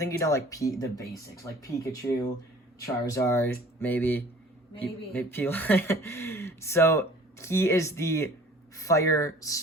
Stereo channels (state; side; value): normal; both; correlation 0.49